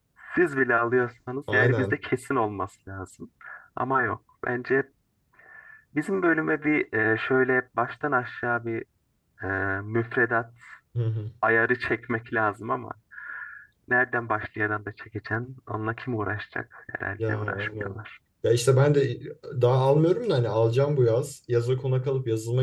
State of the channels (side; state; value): both; identical; correlation 1.00